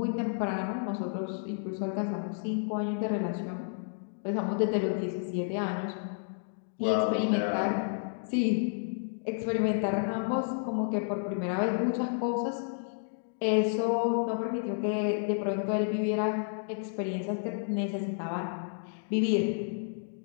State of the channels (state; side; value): silent; right; digital silence